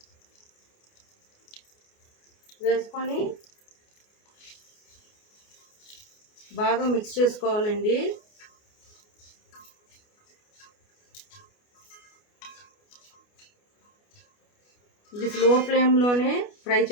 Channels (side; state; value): right; late; 29 ms